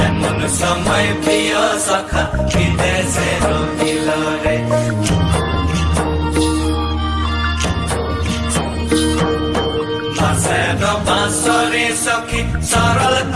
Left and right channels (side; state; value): both; identical; correlation 1.00